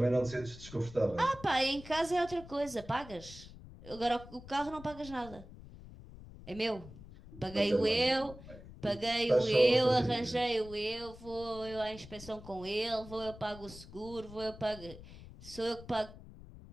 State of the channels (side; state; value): left; noise; rumble, 16 dB below the sound